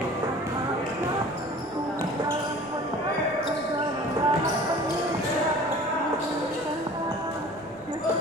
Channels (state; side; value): noise; right; rumble, 29 dB below the sound